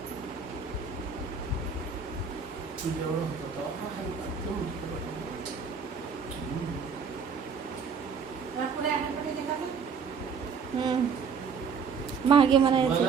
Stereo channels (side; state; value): left; quieter; 5.9 dB